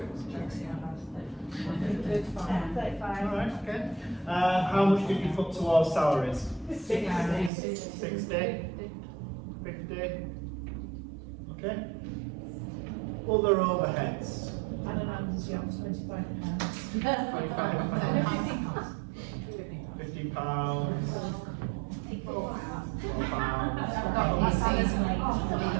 35. Alright, okay. How much did you put towards salaries? 60? 50? Okay. Other overheads? I don't know, this year was £25. £50.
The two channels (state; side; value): drops out; left; at 7.5 s